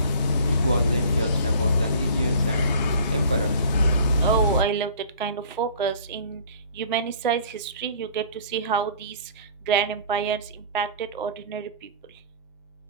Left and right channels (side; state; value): both; inverted; correlation -0.48